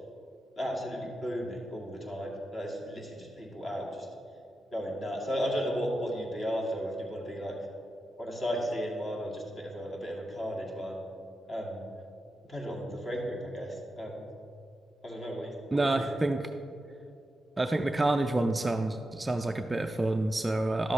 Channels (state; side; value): normal; both; correlation 0.90